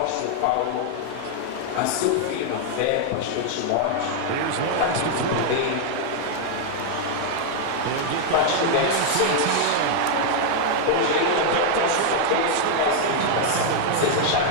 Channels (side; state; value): both; different; correlation 0.00